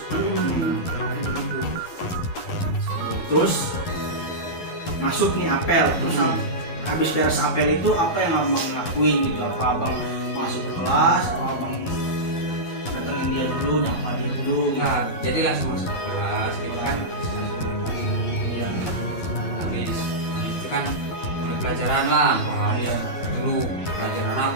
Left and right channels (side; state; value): right; late; 11 ms